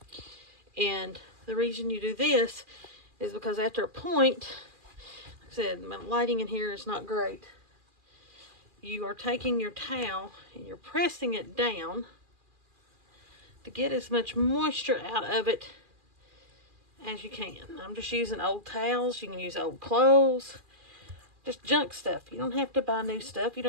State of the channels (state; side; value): late; left; 2.4 ms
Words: And the reason you do this is because after a point, like I said, my lighting in here is not great. You are taking your towel and you're pressing it down to get as much moisture out of it as you can. I'm just using old towels. You can use old clothes. Just junk stuff. You don't have to buy new stuff. You